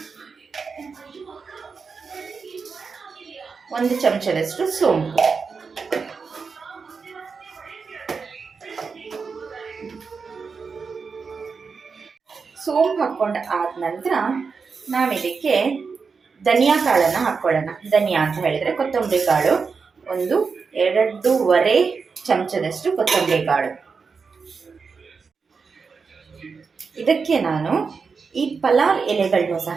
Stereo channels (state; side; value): quieter; left; 5.2 dB